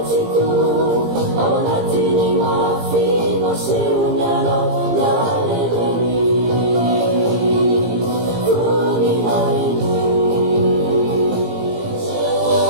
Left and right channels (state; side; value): late; left; 17 ms